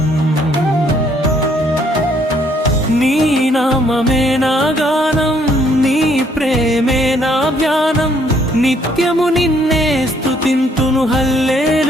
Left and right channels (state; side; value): normal; both; correlation 0.66